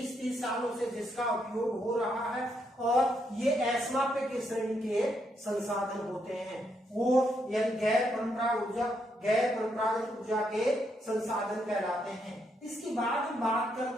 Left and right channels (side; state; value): both; normal; correlation 0.77